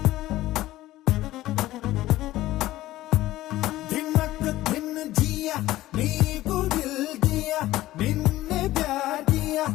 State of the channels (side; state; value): right; quieter; 16.0 dB